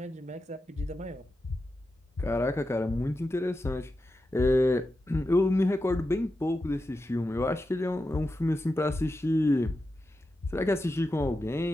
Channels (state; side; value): normal; both; correlation 0.90